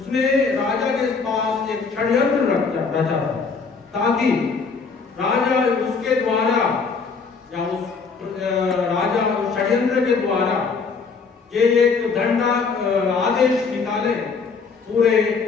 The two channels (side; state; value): right; quieter; 5.0 dB